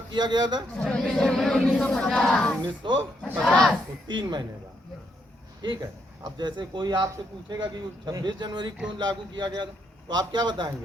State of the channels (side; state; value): both; normal; correlation 0.76